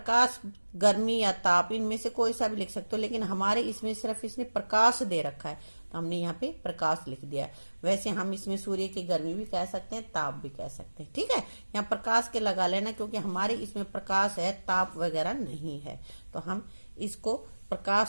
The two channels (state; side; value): inverted; both; correlation -1.00